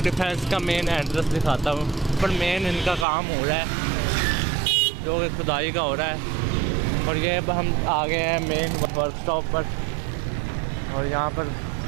डिफेंस का मेन एड्रेस दिखाता हूँ, पर मेन इनका काम हो रहा है जो कि खुदाई का हो रहा है। और ये अब हम आ गए हैं मेन वर्कशॉप पर और यहाँ पर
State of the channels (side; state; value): left; drops out; at 3.1 s